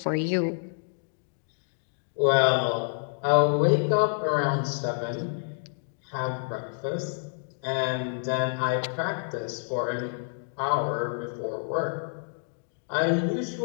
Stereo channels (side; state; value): right; silent; digital silence